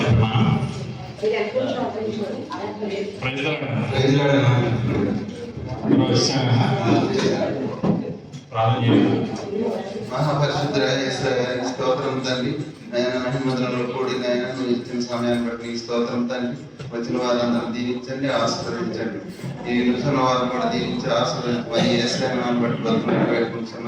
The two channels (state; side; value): identical; both; correlation 1.00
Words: మనం మహాపరిశుద్ధ స్తోత్రం తండ్రి. నైనా మహిమధులలో కూడి నైనా నువ్వు ఇచ్చిన సమయాన్ని బట్టి నీ స్తోత్రం తండ్రి. వచ్చిన వారందరూ దీవించండి, ఆశీర్వదించండి. ఈ నిమిషంలో వారిని కూడా దీవించి ఆశీర్వదించి ఏసాన్ని బట్టి బతుకుని